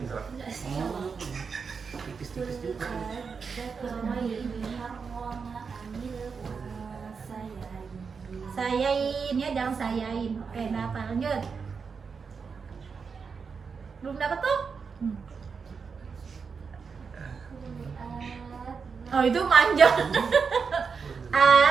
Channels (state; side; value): quieter; left; 5.6 dB